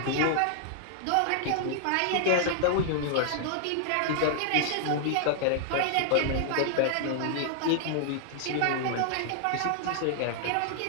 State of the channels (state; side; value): different; both; correlation 0.00